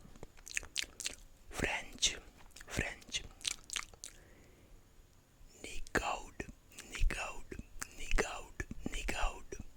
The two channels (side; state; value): both; identical; correlation 1.00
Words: French, French. Nick out, nick out, nick out, nick out,